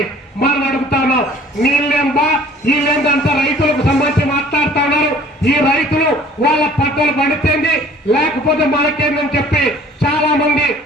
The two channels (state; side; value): normal; both; correlation 0.52